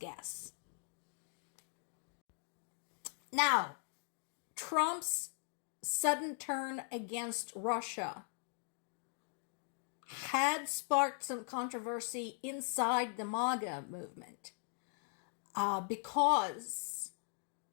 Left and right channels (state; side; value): silent; right; 51 dB below the other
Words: Now, Trump's sudden turn against Russia had sparked some controversy inside the MAGA movement. Because